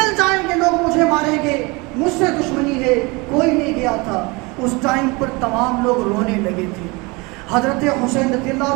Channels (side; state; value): left; quieter; 26.3 dB